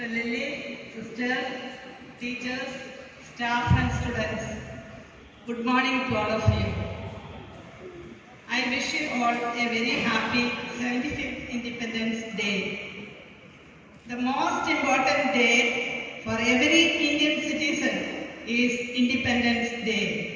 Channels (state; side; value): identical; both; correlation 1.00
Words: Lily, Sisters, Teachers, Staff and Students. Good morning to all of you. I wish you all a very happy 75th Independence Day. The most important day for every Indian citizen is Independence Day.